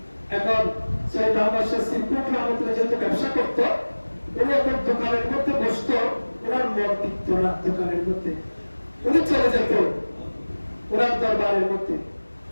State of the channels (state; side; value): inverted; both; correlation -1.00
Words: এখন সৈয়দ আহমদ শাহ সিরকুটি রহমাতুল্লাহ যেহেতু ব্যবসা করত, উনি এখন দোকানের মধ্যে বসত, ওনার মন টিকত না দোকানের মধ্যে। উনি চলে যেত ওনার দরবারের মধ্যে,